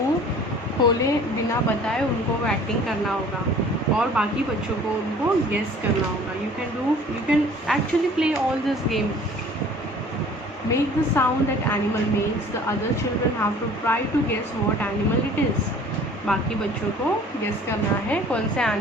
खोले बिना बताए उनको वो एक्टिंग करना होगा और बाकी बच्चों को उनको गेस करना होगा. You can actually play all this game. Make the sound that animal makes. The other children have to try to guess what animal it is. बाकी बच्चों को गेस करना है कौन से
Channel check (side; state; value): both; normal; correlation 0.49